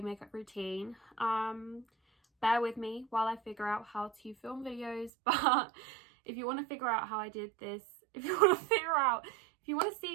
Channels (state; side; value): drops out; left; at 5.1 s